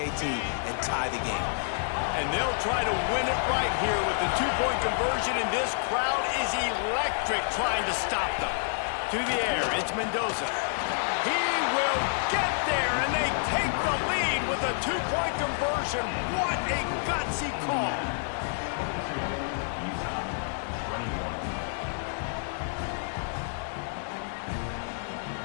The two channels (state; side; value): silent; right; digital silence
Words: and tie the game. And they'll try to win it right here with the 2-point conversion, and this crowd is electric trying to stop them. To the air, it's Mendoza. He will get there, and they take the lead with a 2-point conversion. What a gutsy call. Utah, 21.